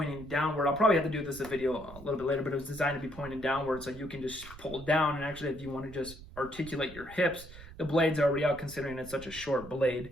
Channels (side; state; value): right; noise; rumble, 16 dB below the sound